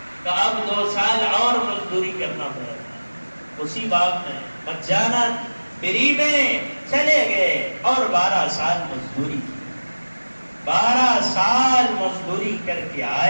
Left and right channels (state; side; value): inverted; both; correlation -1.00